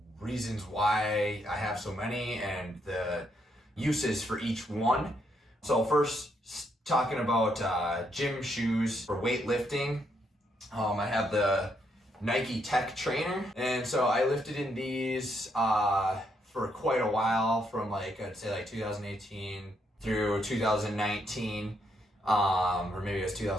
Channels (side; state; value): both; normal; correlation 0.76